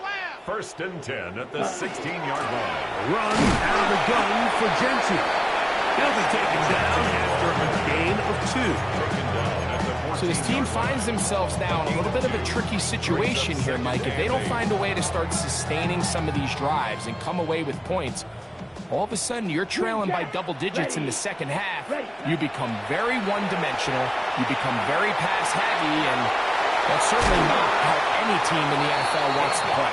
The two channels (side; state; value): both; identical; correlation 1.00